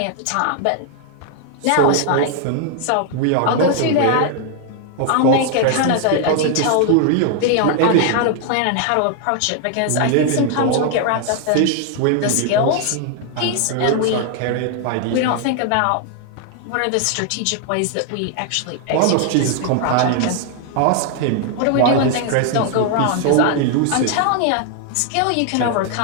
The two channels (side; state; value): both; different; correlation 0.00